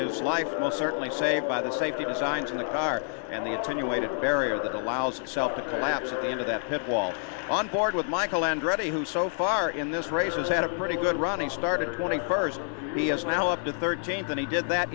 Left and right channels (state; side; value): silent; right; 59 dB below the other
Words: life most certainly saved by the safety designs in the car and the attenuated barrier that allows itself to collapse at the end of that pit wall. On board with Michael Andretti, who so far in this race has had a pretty good run. He started 21st. He is now up to 13th, and he did that